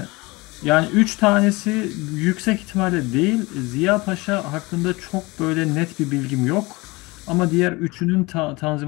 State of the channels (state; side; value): quieter; right; 23.8 dB